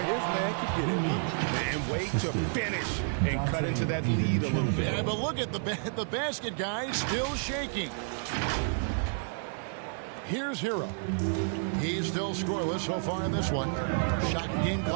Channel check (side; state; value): left; silent; 58 dB below the other